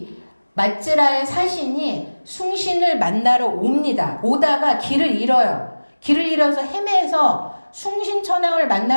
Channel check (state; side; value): inverted; both; correlation -1.00